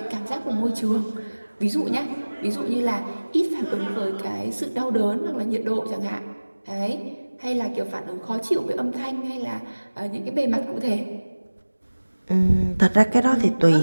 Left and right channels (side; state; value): both; inverted; correlation -1.00